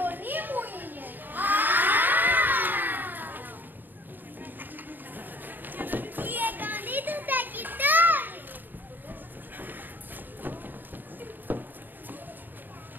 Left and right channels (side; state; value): left; late; 0.090 ms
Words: μου είναι. Η εγγονή του Τακιτόρη.